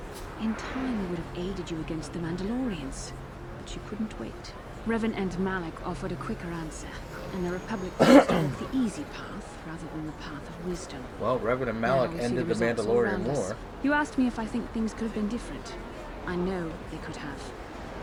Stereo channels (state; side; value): identical; both; correlation 1.00